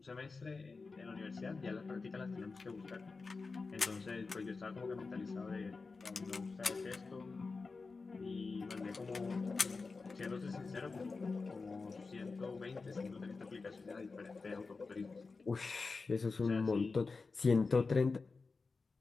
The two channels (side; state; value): right; quieter; 4.2 dB